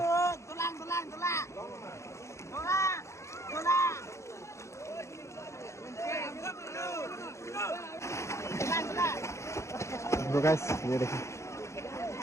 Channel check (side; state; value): right; late; 0.14 ms